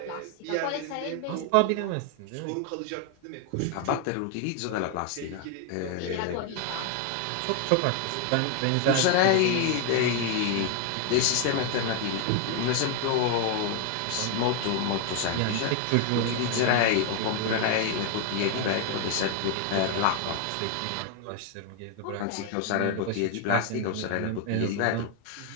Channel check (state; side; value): different; both; correlation 0.01